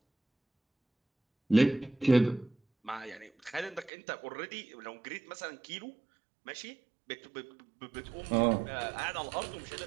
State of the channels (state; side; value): drops out; left; at 3.9 s